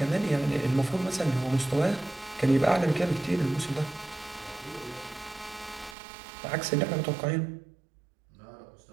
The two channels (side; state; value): left; drops out; at 6.0 s